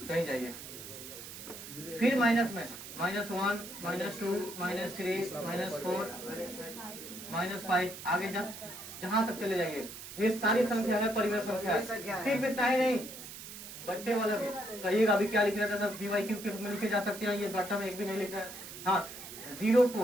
कहीं जाइए। फिर माइनस में -1, -2, -3, -4, -5 आगे जहां तक चले जाइए। ये सारी संख्या है परिमेय संख्या। सिर्फ इतना ही नहीं, बट्टे वाला भी कहिएगा। अभी क्या लिख रहा था सर? p बाई q के रूप में लिखे जा सकते हैं। ये बट्टा में एक भी नहीं लिख रहा है। हाँ, 0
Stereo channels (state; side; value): noise; right; hiss, 12 dB below the sound